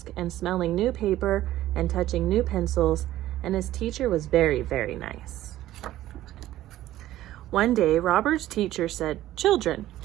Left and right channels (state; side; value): quieter; left; 14.3 dB